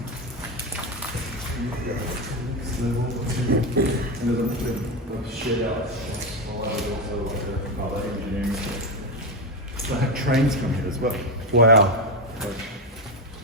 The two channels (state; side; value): normal; both; correlation 0.12